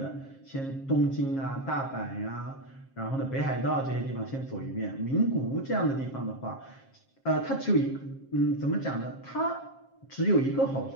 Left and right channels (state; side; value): late; right; 7.4 ms